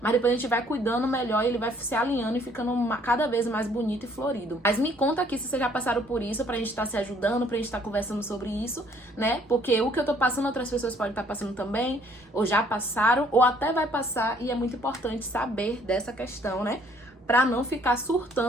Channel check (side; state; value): both; normal; correlation 0.62